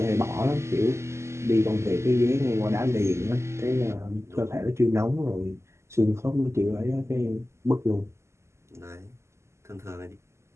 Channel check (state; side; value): late; left; 0.13 ms